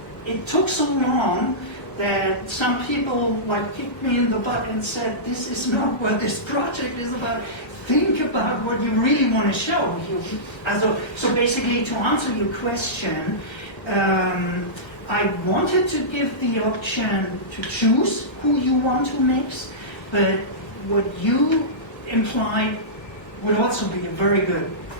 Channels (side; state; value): right; late; 1.3 ms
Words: it took so long that some people like kicked me in the butt and said, this is not what this project is about. Think about what you really want to show. So basically, to answer your question, I wanted to give the option to choose who you want to mix, but what you implied would also be a very good